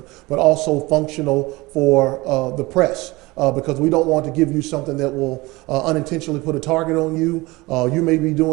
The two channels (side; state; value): left; quieter; 21.9 dB